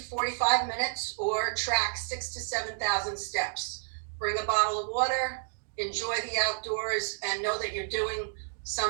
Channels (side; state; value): left; silent; digital silence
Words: 45 minutes, or track 6,000 to 7,000 steps. Bring a bottle of water, enjoy the outdoors, and know that you're doing